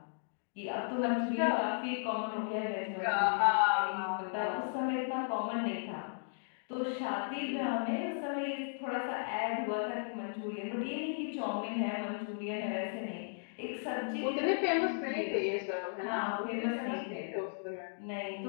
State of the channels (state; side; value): silent; right; digital silence